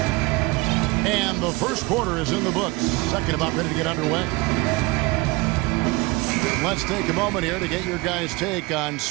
And the first quarter is in the books. Second about ready to get underway. Let's take a moment here to get your guys' take on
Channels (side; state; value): left; quieter; 24.0 dB